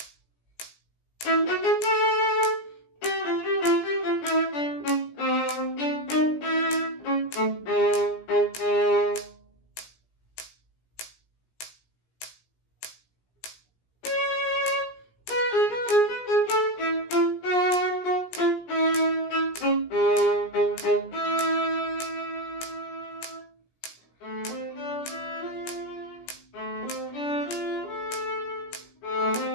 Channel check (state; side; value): late; right; 17 ms